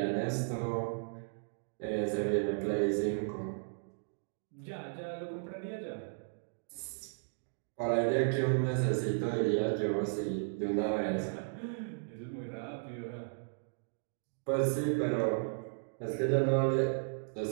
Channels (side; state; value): left; silent; digital silence